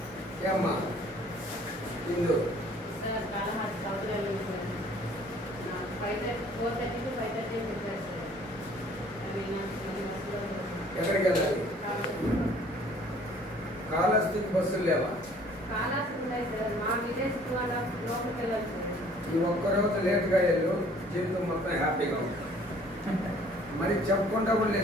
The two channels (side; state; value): both; normal; correlation 0.55